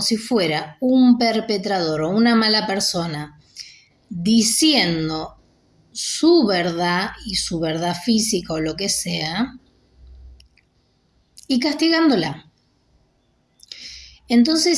si fuera un perpetrador o una mala persona, diciendo su verdad y su verdad física o lo que sea, y castigándola.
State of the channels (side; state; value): both; identical; correlation 1.00